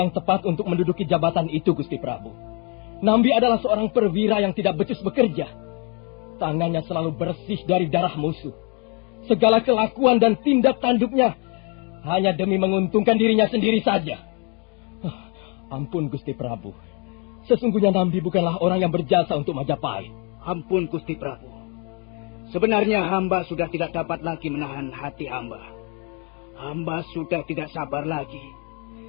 tepat untuk menduduki jabatan itu, Gusti Prabu. Nambi adalah seorang perwira yang tidak becus bekerja. Tangannya selalu bersih dari darah musuh. Segala kelakuan dan tindak tanduknya hanya demi menguntungkan dirinya sendiri saja. Ampun, Gusti Prabu. Sesungguhnya Nambi bukanlah orang yang berjasa untuk Majapahit. Ampun, Gusti Prabu. Sebenarnya hamba sudah tidak dapat lagi menahan hati hamba. Hamba sudah tidak sabar lagi.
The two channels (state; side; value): quieter; right; 34.1 dB